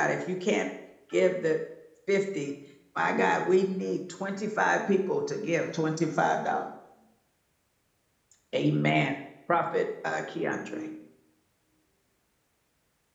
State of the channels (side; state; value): both; identical; correlation 1.00